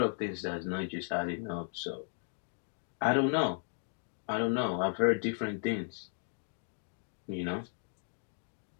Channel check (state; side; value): silent; right; digital silence